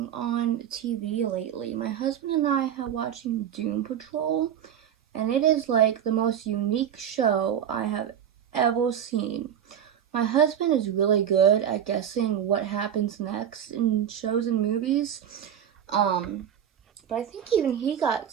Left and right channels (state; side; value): quieter; left; 9.4 dB